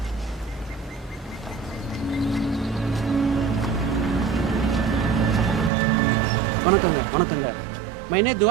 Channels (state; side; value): drops out; left; at 5.7 s